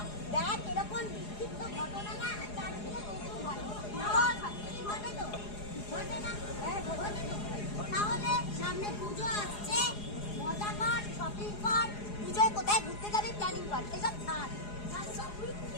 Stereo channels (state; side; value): late; right; 4.8 ms